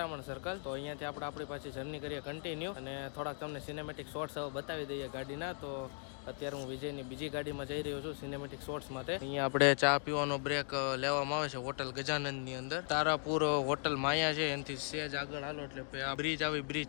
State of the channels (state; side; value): silent; right; 53 dB below the other